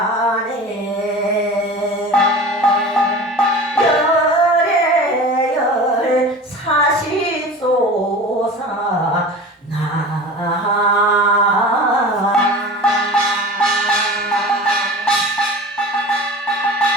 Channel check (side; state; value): both; normal; correlation 0.36